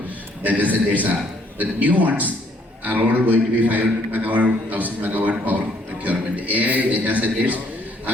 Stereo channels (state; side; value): normal; both; correlation 0.65